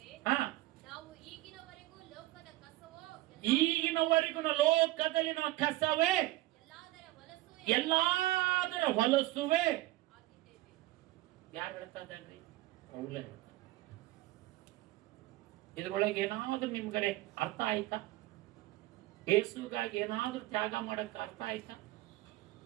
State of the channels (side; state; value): left; quieter; 17.5 dB